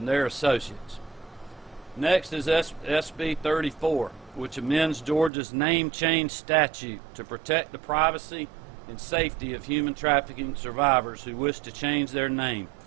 their associates. Next is SB 34, which amends Georgia's name change statute to protect the privacy and safety of human trafficking survivors who wish to change their name.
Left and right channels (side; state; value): left; drops out; at 5.3 s